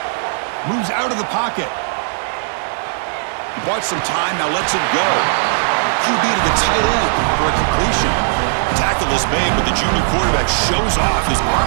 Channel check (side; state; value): left; silent; digital silence